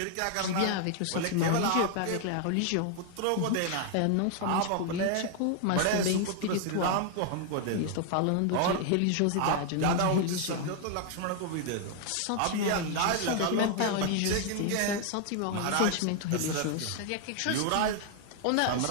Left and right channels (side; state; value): both; different; correlation 0.00